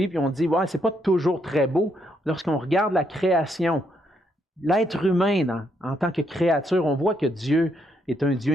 et on dit, ouais, c'est pas toujours très beau, lorsqu'on regarde la création, l'être humain en tant que créature, on voit que Dieu est un Dieu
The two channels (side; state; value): both; normal; correlation 0.75